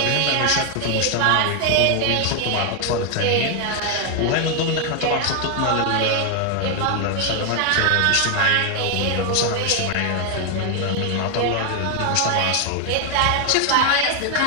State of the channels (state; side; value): different; both; correlation 0.00